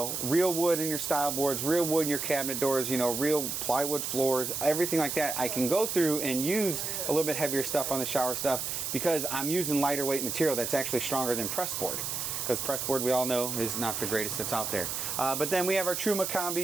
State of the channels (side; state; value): right; noise; hiss, 3 dB below the sound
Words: real wood in your style boards, real wood in your cabinet doors, you know, real plywood floors, everything like that, I can go through and use a little bit heavier stuff on the shower stuff because I'm using lighter weight material that's actually stronger than press board. Because press board, we all know, is not the greatest that's out there. But then we have our Truma